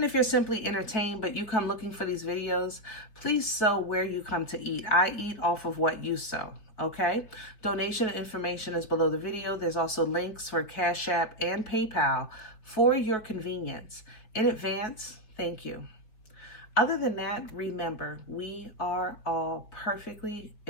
if you're simply entertained, but you come looking for these videos, please sow where you come to eat. I eat off of what you sow, okay? Donation information is below the video. There's also links for CashApp and PayPal for your convenience. In advance, thank you. Other than that, remember, we are all perfectly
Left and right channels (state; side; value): late; right; 4.7 ms